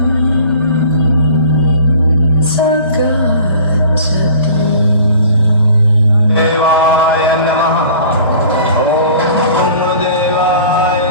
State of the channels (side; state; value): both; inverted; correlation -0.45